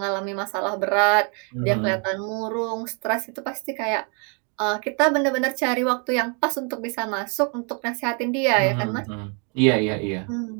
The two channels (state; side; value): quieter; left; 37.6 dB